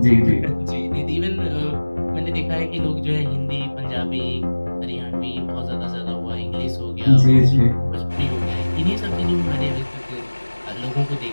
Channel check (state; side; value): inverted; both; correlation -1.00